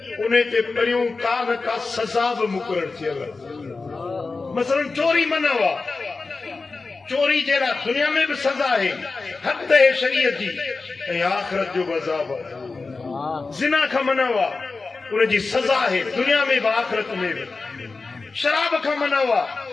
उन ते पहिरियों का न का सज़ा बि मुक़रर थियल आहे। मसलन चोरी मना आहे, चोरी जहिड़ा दुनिया में भी सजा है, हद है शरीयत जी, ऐं आखिरत जो अज़ाब आहे। ज़िना खां मना हुआ, उनजी सजा है दुनिया में भी आखिरत में भी। शराब खां मना हुआ,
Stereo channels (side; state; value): right; quieter; 4.0 dB